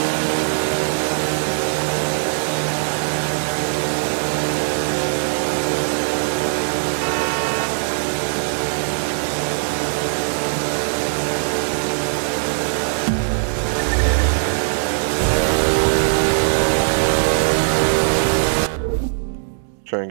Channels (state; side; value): silent; left; 65 dB below the other